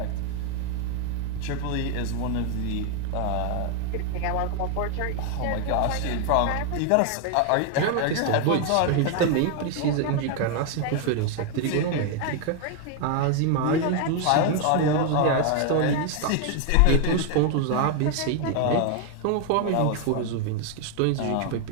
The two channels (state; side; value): different; both; correlation 0.00